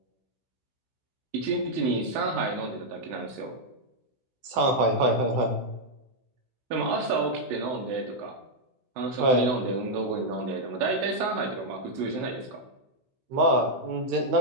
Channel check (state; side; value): late; left; 16 ms